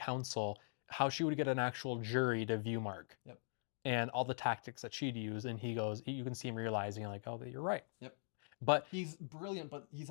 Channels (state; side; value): silent; right; digital silence